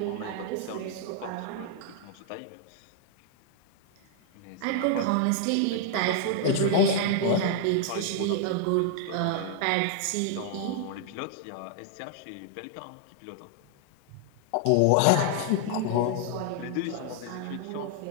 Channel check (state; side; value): different; both; correlation 0.00